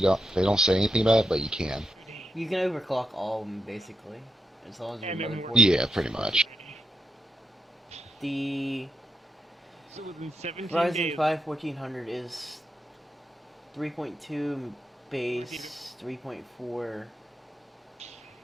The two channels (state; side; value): normal; both; correlation 0.84